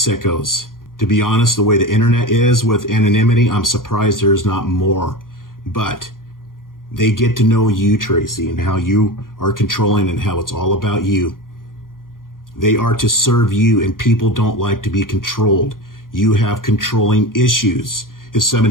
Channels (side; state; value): right; late; 0.90 ms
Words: To be honest, the way the internet is with anonymity, I'm surprised there's not more. But they get to know you, Tracy, and how you are controlling and how it's all about you. They are to serve you, and people don't like to be controlled. You have controlling issues. If